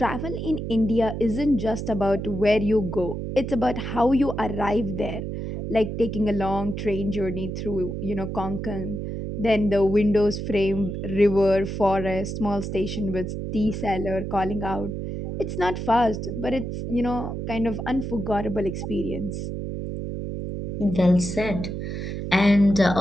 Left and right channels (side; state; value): right; noise; hum, 5 dB below the sound